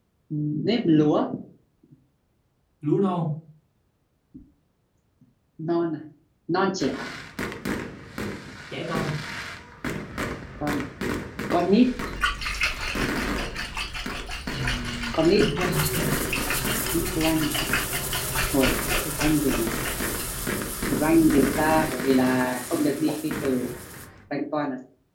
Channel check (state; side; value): identical; both; correlation 1.00